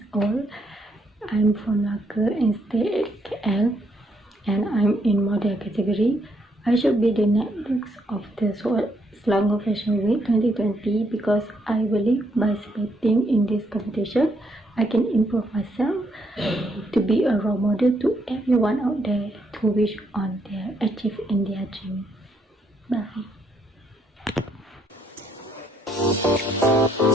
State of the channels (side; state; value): both; normal; correlation 0.74